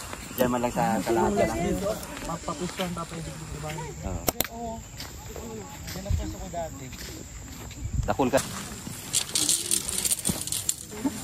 Diyan man lang sa kalahati lang. Mapapustuhan pa pwede dito ba? Oo. Yan ang puso ko dati. Dakul ka.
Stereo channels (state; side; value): identical; both; correlation 1.00